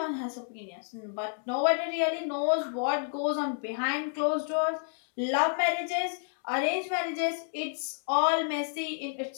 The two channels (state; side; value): silent; right; digital silence